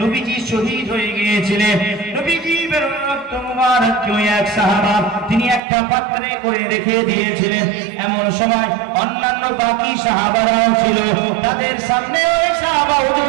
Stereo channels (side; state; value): left; drops out; at 5.6 s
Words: নবীজি শহীদ হয়ে গিয়েছিলেন। নবীজির রক্ত মুবারককে ওই এক সাহাবা তিনি একটা পাত্রে করে রেখে দিয়েছিলেন। এমন সময় অন্যান্য বাকি সাহাবারাও ছিল, তাদের সামনে ওই সাহাবা